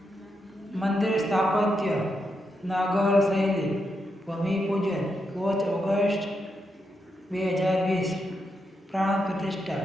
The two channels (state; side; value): normal; both; correlation 0.83